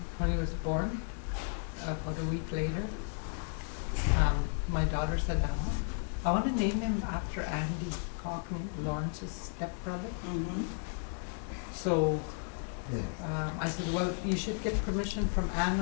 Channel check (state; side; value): silent; right; 55 dB below the other